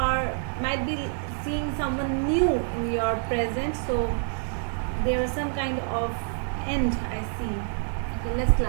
might be seeing someone new in your present. So there is some kind of end I see. Okay, let's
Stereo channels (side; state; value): left; silent; 60 dB below the other